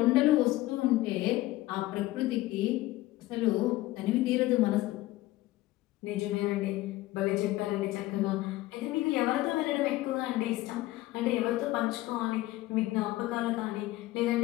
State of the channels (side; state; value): right; quieter; 17.3 dB